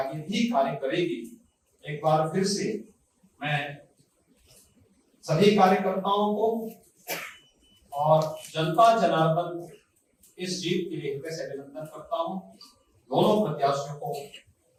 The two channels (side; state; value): both; identical; correlation 1.00